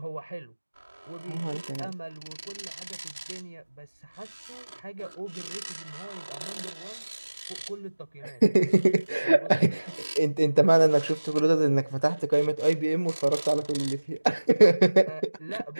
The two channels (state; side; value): inverted; both; correlation -1.00